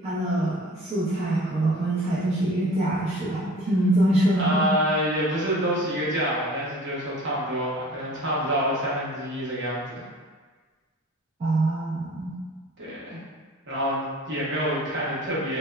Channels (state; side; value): normal; both; correlation 0.45